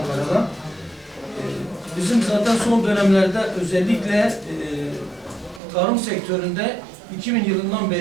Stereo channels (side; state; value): left; drops out; at 5.6 s